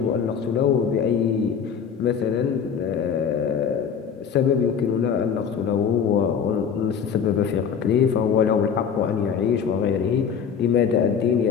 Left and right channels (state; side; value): quieter; right; 7.2 dB